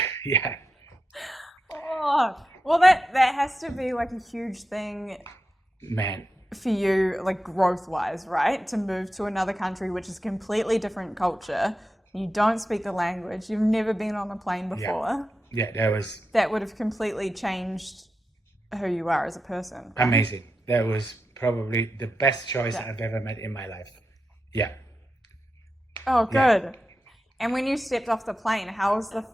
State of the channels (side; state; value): both; normal; correlation 0.89